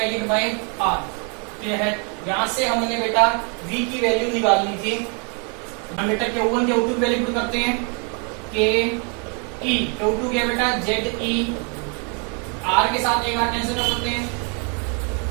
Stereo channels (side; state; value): left; quieter; 37.1 dB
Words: by r। Clear है? यहाँ से हमने बेटा v की वैल्यू निकालनी थी। हम बेटा Q1 Q2 की वैल्यू पुट करते हैं। Q2 क्या बेटा? ZE, r के साथ एक r कैंसिल कर सकते हैं,